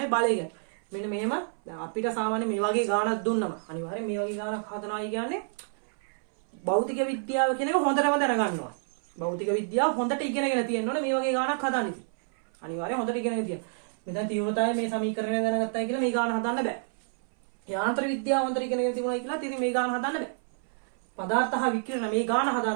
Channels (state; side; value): silent; left; 59 dB below the other